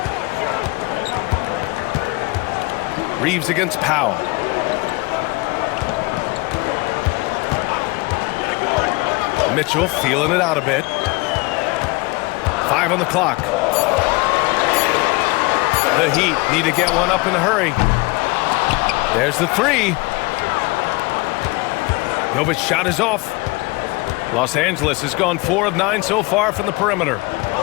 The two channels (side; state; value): right; quieter; 25.4 dB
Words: Reeves against Powell. Mitchell feeling it out a bit. 5 on the clock. The Heat need to get one up in a hurry. There's the 3. Novic's shot is off. Los Angeles has gone 4 of 9 so far from the perimeter.